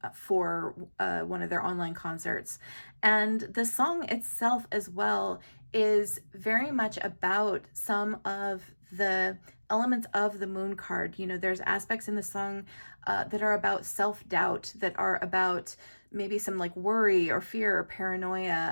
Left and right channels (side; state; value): both; inverted; correlation -1.00